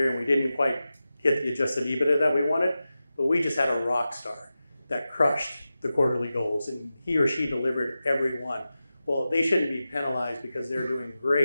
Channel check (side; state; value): both; inverted; correlation -0.93